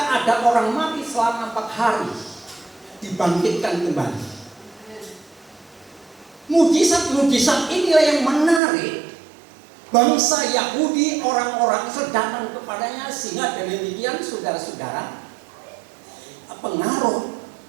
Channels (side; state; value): left; drops out; at 8.6 s